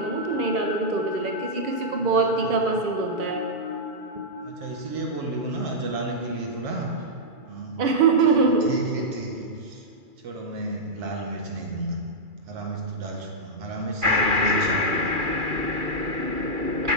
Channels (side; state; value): left; late; 2.4 ms